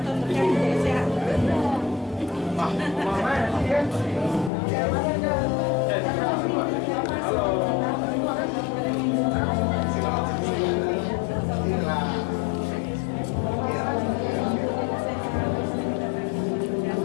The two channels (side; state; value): right; drops out; at 4.5 s